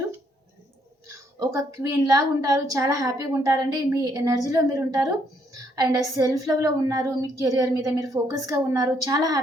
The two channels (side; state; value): both; normal; correlation 0.71